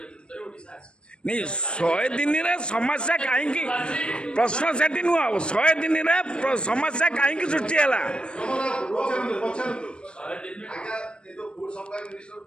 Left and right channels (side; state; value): right; late; 0.055 ms